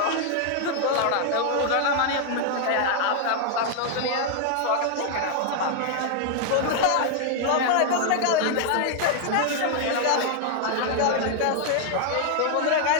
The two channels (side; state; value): both; different; correlation 0.00